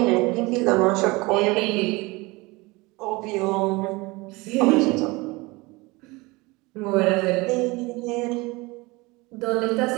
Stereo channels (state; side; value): quieter; left; 23.6 dB